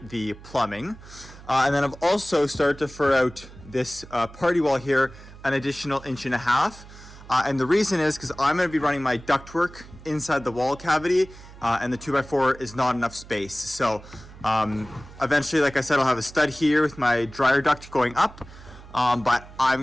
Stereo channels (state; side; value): noise; right; hum, 18 dB below the sound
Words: the plumbing. And then I've also started to fur out this party wall here an additional 1.5 inches. And the reason is because I'm going to be running my ductwork inside the wall cavity, and the 2x4 is not enough space. So eventually, like I said, I'll have a stud here with my dryer duct going up. But I'm